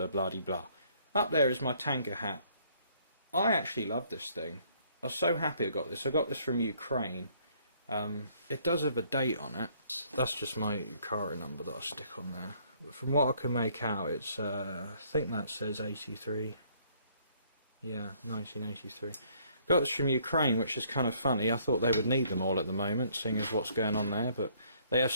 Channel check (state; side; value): inverted; both; correlation -0.64